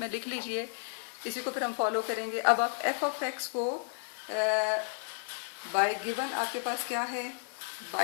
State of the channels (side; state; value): right; silent; digital silence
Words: में लिख लीजिए, इसी को फिर हम फॉलो करेंगे। अब आप f ऑफ x को बाय गिवन आपके पास क्या है,